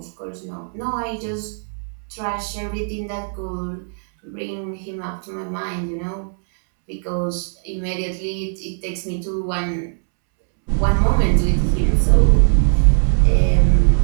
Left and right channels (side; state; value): left; silent; 66 dB below the other